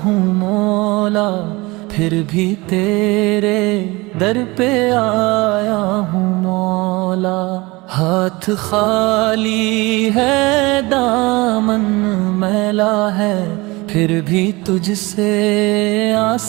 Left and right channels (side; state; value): left; quieter; 23.3 dB